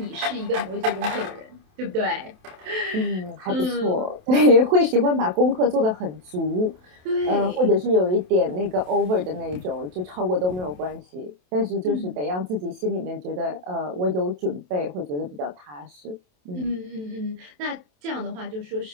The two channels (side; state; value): left; late; 27 ms